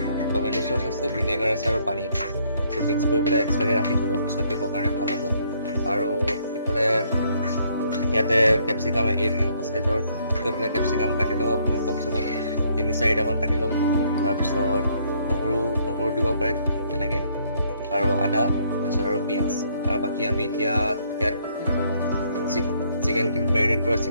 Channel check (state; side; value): inverted; both; correlation -0.67